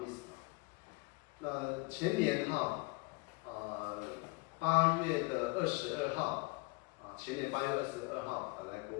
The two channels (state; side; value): quieter; right; 28.2 dB